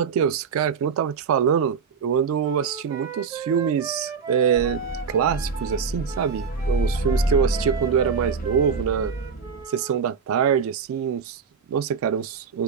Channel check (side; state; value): left; quieter; 6.0 dB